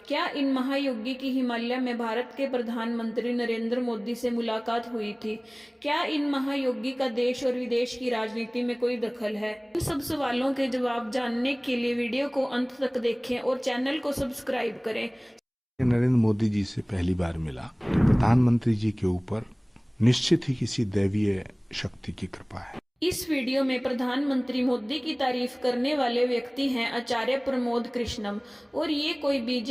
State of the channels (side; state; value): both; identical; correlation 1.00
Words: क्या इन महायोगी की हिमालय में भारत के प्रधानमंत्री नरेंद्र मोदी से मुलाकात हुई थी? क्या इन महायोगी का देश और विदेश की राजनीति में कोई दखल है? इन सब सवालों के जवाब जानने के लिए वीडियो को अंत तक देखें और चैनल को सब्सक्राइब करें। नरेंद्र मोदी जी से पहली बार मिला तो प्रधानमंत्री जी के ऊपर निश्चित ही किसी दैवीय शक्ति की कृपा है। इस वीडियो में प्रधानमंत्री मोदी की तारीफ करने वाले व्यक्ति हैं आचार्य प्रमोद कृष्णम, और ये कोई